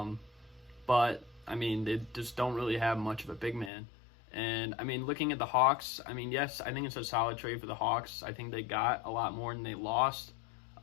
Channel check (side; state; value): right; drops out; at 3.7 s